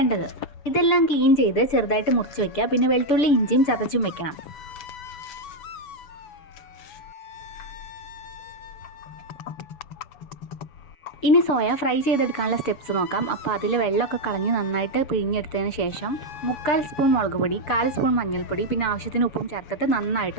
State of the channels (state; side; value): late; right; 7.1 ms